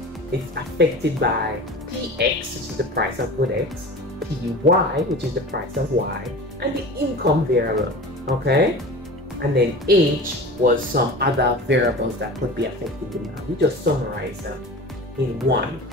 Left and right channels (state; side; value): normal; both; correlation 0.35